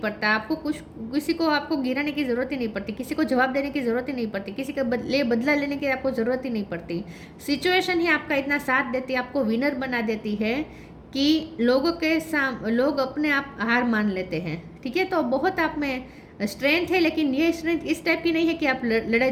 आपको कुछ किसी को आपको गिराने की ज़रूरत ही नहीं पड़ती, किसी को जवाब देने की ज़रूरत ही नहीं पड़ती, किसी का बदला लेने की आपको ज़रूरत ही नहीं पड़ती। सिचुएशन ही आपका इतना साथ देती है, आपको विनर बना देती है कि लोग अपने आप हार मान लेते हैं। ठीक है, तो बहुत आप में स्ट्रेंथ है, लेकिन ये स्ट्रेंथ इस टाइप की नहीं है कि आप लड़ाई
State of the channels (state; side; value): identical; both; correlation 1.00